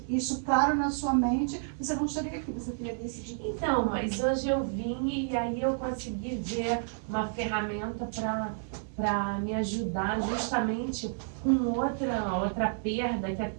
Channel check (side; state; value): left; silent; digital silence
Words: isso claro na sua mente, você não estaria aqui, você teria decidido. Então, mas hoje eu vim e aí eu consegui ver uma ferramenta para me ajudar justamente com outra perda que é